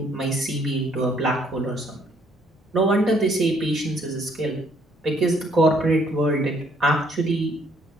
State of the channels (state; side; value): normal; both; correlation 0.66